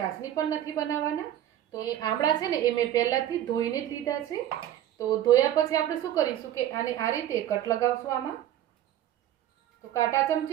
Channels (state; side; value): quieter; left; 11.8 dB